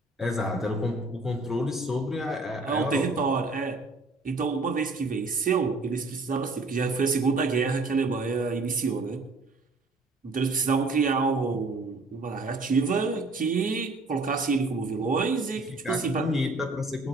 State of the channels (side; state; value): left; quieter; 3.2 dB